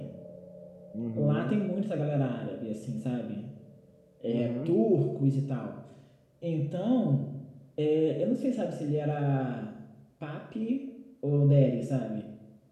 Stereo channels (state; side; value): identical; both; correlation 1.00